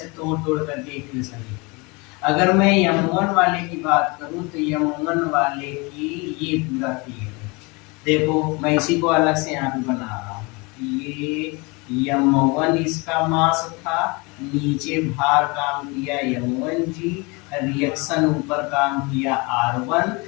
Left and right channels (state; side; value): quieter; right; 27.7 dB